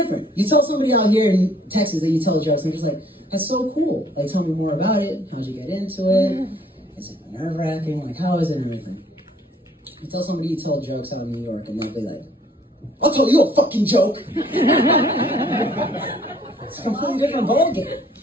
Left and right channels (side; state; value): both; normal; correlation 0.60